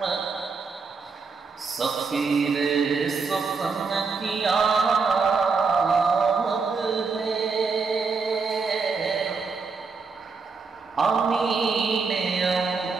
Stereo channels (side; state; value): left; quieter; 4.8 dB